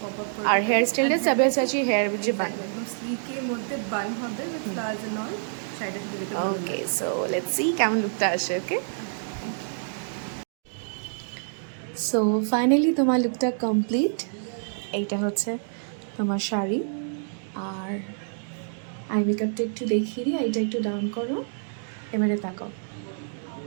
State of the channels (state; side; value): silent; left; digital silence